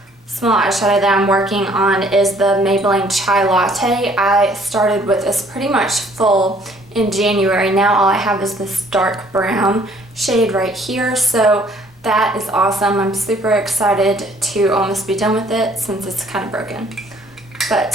small eyeshadow that I'm working on is the Maybelline Chai Latte. I started with this pretty much full in January. Now all I have is this dark brown shade right here, so that is awesome. I'm super excited to almost be done with it since it's kind of broken.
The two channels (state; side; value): normal; both; correlation 0.60